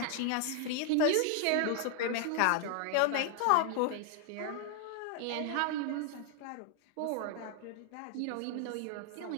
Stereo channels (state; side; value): different; both; correlation 0.00